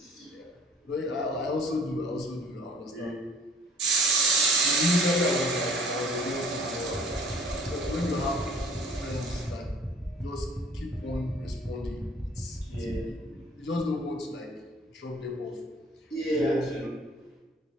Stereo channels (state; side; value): normal; both; correlation 0.53